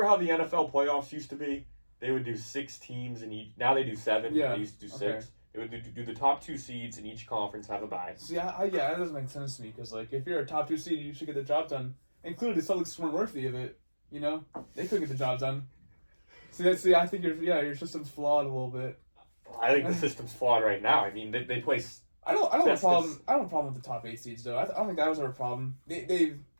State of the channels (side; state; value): both; inverted; correlation -1.00